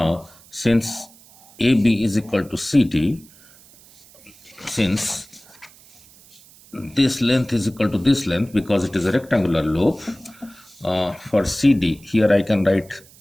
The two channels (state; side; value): noise; right; hiss, 25 dB below the sound